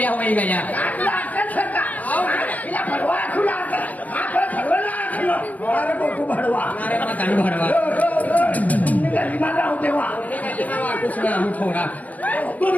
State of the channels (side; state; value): right; late; 0.076 ms